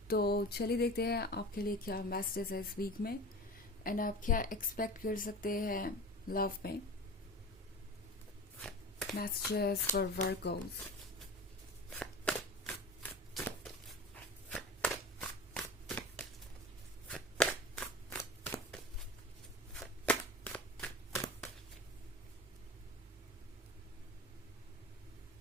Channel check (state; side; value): normal; both; correlation 0.34